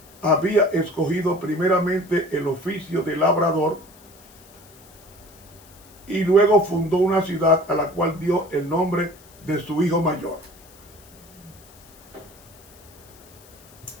Había escogido primeramente el oficio de labrador y luego fundó una ciudad a la cual dio el nombre de su hijo mayor.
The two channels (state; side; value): noise; left; hiss, 24 dB below the sound